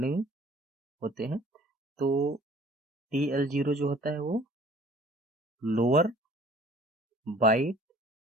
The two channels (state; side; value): normal; both; correlation 0.52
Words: होते हैं। तो TL0 जो होता है वो lower byte